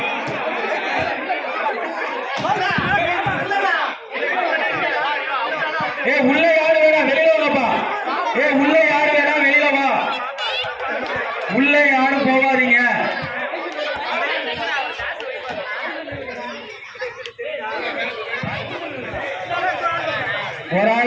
ஏ உள்ள யாரு வேணா வெளியில வாப்பா. ஏ உள்ள யாரு வேணா வெளியில வா. உள்ள யாரும் போகாதீங்க. ஒரு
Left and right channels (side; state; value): both; identical; correlation 1.00